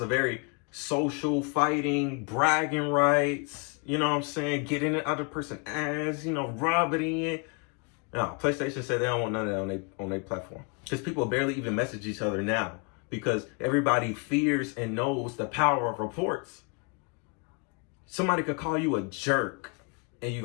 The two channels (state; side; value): quieter; right; 34.2 dB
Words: very social, fighting, bragging rights, you know what I'm saying? Get in the other person's ass, you know, rub it in. No, PlayStation said they don't want none of that on their platform. Because people barely even message each other now. Because everybody fears and knows the power of reports. Somebody could call you a jerk and you're